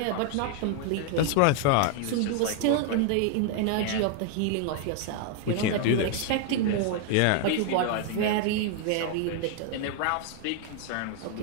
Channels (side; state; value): both; different; correlation 0.00